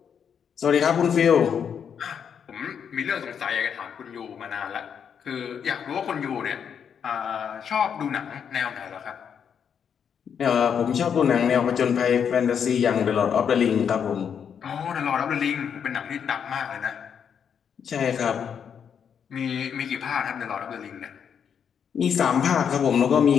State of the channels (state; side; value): quieter; right; 7.6 dB